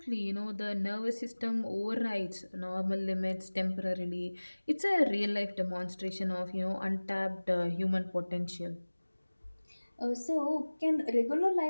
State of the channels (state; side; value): inverted; both; correlation -1.00